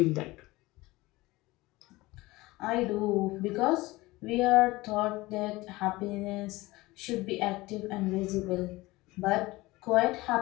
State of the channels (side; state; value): right; quieter; 20.3 dB